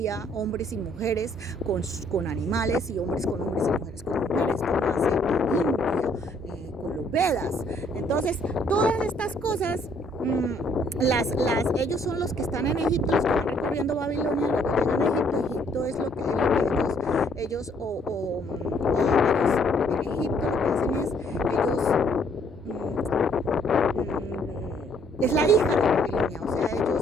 hombres y mujeres con animales, y hombres con hombres y mujeres con mujeres, como hace India, con los Vedas. Entonces, todas estas cosas, ellos son los que están en Egipto, los que van recorriendo Babilonia, luego llegan a Egipto. Egipto es lo que ellos en Egipto lo que hacen es, es la hija de Babilonia, o sea,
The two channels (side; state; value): both; normal; correlation 0.65